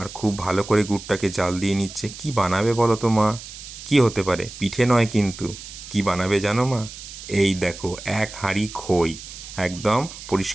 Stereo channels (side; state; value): right; noise; hiss, 13 dB below the sound